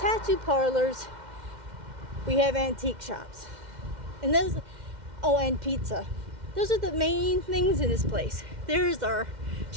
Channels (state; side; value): late; left; 2.1 ms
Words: parlors, we have antique shops. And and pizza. Those are the main things in this place. There's our